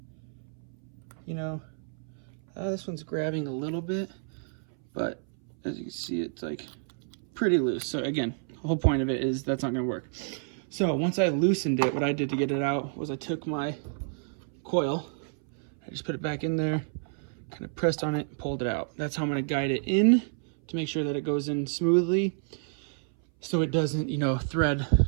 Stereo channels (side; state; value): left; silent; 58 dB below the other